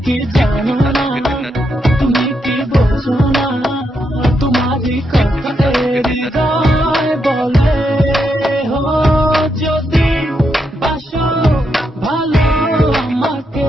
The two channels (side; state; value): both; normal; correlation 0.81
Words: কি জানো না তুমি কি বোঝো না তোমারই কথা হৃদয় বলে হো যদি বাসো ভালো